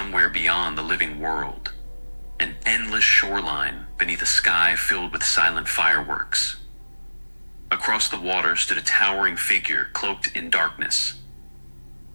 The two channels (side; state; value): both; inverted; correlation -1.00